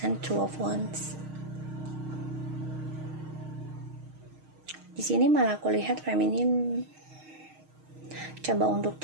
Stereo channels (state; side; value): late; left; 6.4 ms